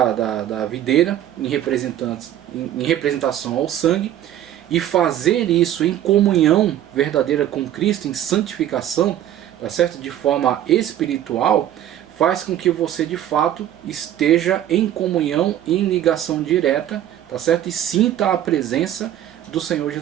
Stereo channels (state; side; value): quieter; left; 11.6 dB